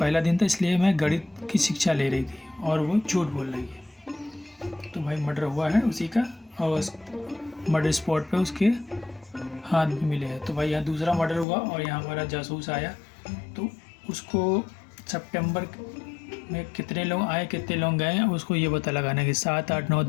दिन था इसलिए मैं गणित की शिक्षा ले रही थी, और वो झूठ बोल रही है। तो भाई मर्डर हुआ है उसी का, और उस मर्डर स्पॉट पे उसके हाथ भी मिले हैं। तो भाई यहाँ दूसरा मर्डर हुआ और यहाँ हमारा जासूस आया, तो उसको सितंबर में कितने लोग आए कितने लोग गए उसको ये पता लगाना है कि 7, 8, 9,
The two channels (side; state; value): right; drops out; at 11.5 s